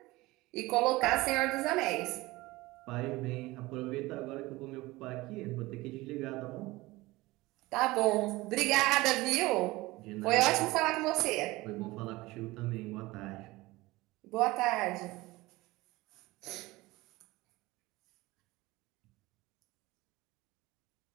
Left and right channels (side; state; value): left; quieter; 20.3 dB